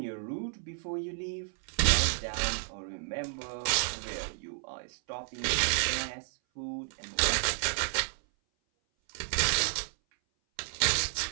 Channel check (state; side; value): silent; left; 57 dB below the other